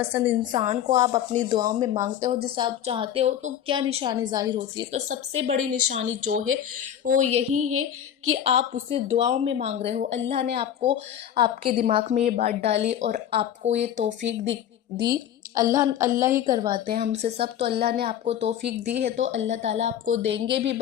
इंसान को आप अपनी दुआओं में मांगते हो जिसे आप चाहते हो, तो क्या निशानी ज़ाहिर होती है। तो सबसे बड़ी निशानी जो है वो यही है कि आप उसे दुआओं में मांग रहे हो। अल्लाह ने आपको आपके दिमाग में ये बात डाली और आपको ये तौफीक दी। अल्लाह ही करवाते हैं हमसे सब। तो अल्लाह ने आपको तौफीक दी है तो अल्लाह ताला आपको देंगे भी।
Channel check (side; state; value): right; quieter; 10.1 dB